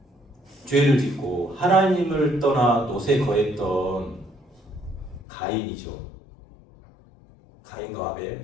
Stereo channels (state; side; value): drops out; right; at 5.2 s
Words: 죄를 짓고 하나님을 떠나 노새 거했던 가인이죠. 가인과